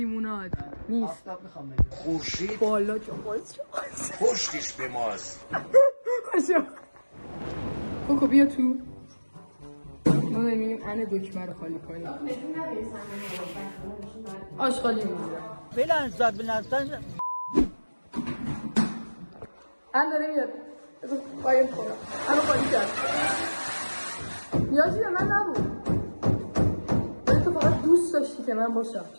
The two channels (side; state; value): both; inverted; correlation -1.00